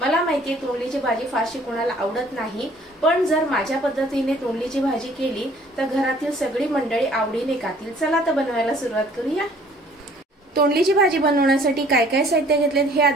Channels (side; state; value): both; normal; correlation 0.56